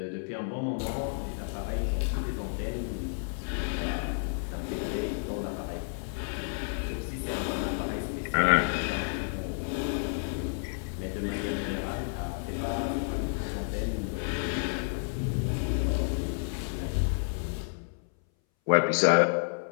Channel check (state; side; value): silent; right; 57 dB below the other